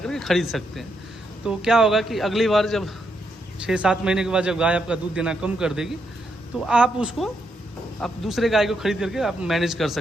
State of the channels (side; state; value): both; normal; correlation 0.79